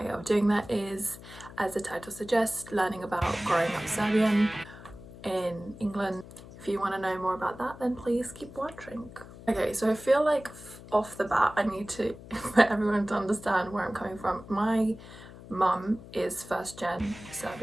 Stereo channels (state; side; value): noise; left; hum, 17 dB below the sound